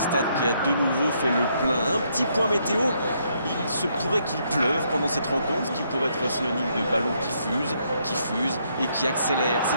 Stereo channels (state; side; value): inverted; both; correlation -0.73